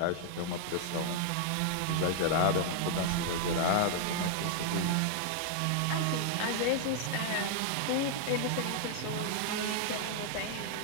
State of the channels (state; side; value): different; both; correlation 0.00